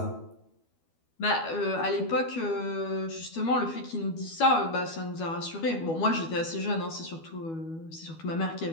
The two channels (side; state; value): right; late; 12 ms